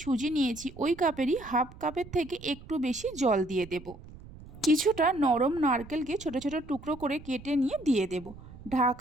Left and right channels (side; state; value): right; noise; rumble, 18 dB below the sound